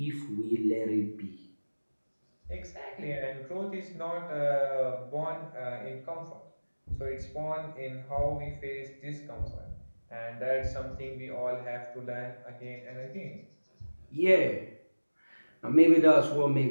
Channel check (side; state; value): both; inverted; correlation -1.00